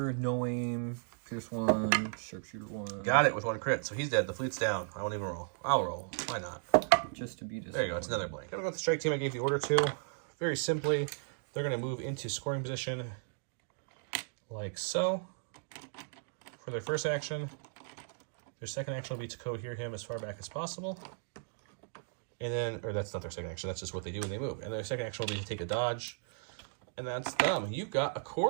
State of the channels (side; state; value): left; silent; digital silence